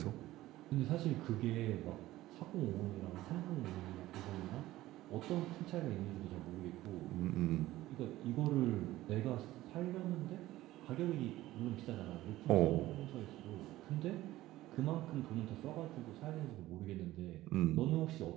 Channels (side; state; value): left; quieter; 16.2 dB